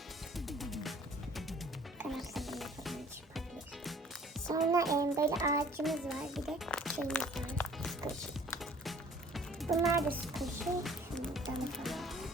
Sonra böyle ağacımız var, bir de şeyimiz var, squishy. Bunlar da squishy. Şundan falan.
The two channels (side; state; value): both; normal; correlation 0.53